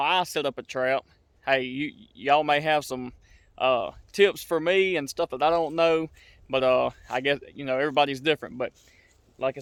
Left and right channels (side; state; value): both; identical; correlation 1.00